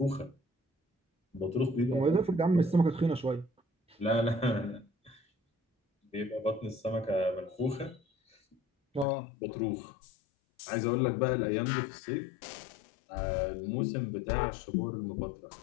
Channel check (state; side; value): drops out; right; at 9.1 s